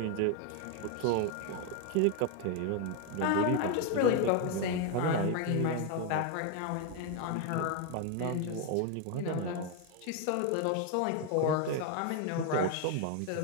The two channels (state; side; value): different; both; correlation 0.01